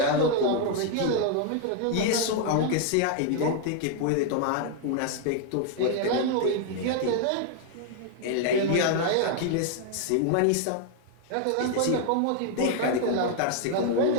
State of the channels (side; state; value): both; different; correlation 0.00